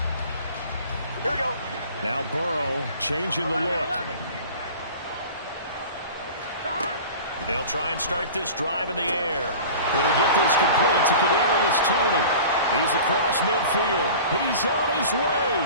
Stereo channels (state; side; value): inverted; both; correlation -0.39